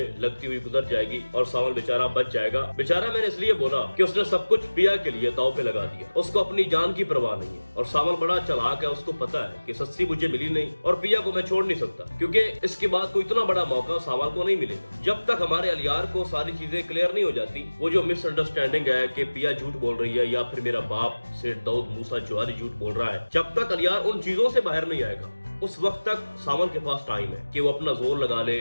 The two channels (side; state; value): both; inverted; correlation -1.00